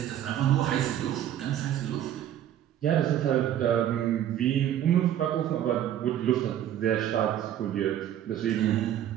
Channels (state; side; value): quieter; left; 11.1 dB